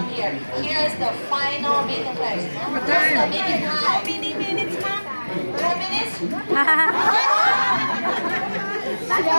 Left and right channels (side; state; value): both; inverted; correlation -1.00